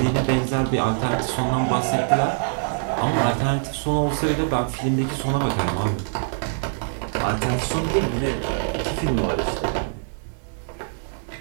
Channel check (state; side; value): silent; left; digital silence